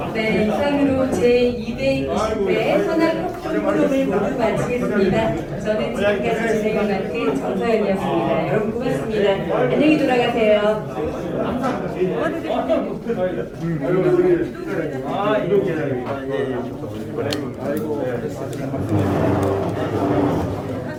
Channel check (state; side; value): identical; both; correlation 1.00